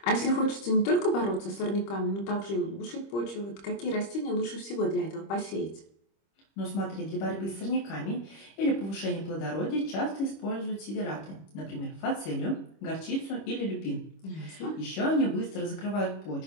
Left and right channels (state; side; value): late; right; 25 ms